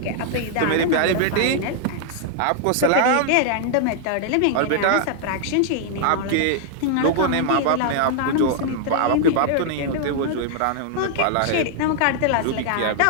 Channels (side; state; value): both; different; correlation 0.00